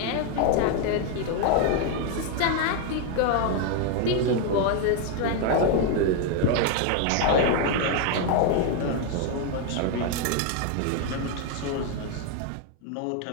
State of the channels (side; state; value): both; different; correlation 0.01